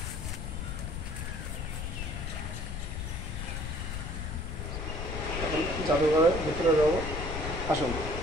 এখন জাদুঘরের ভিতরে যাব, আসুন।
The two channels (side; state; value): left; noise; rumble, 4 dB below the sound